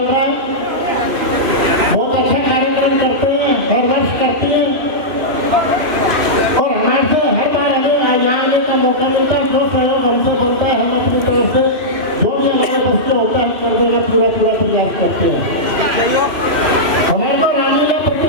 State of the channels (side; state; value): left; late; 2.8 ms